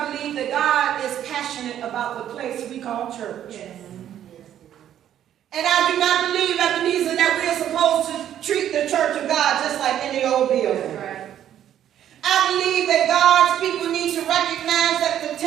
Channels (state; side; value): quieter; left; 10.8 dB